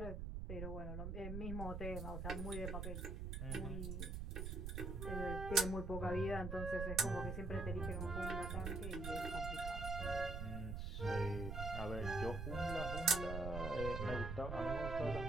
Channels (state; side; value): noise; right; rumble, 3 dB below the sound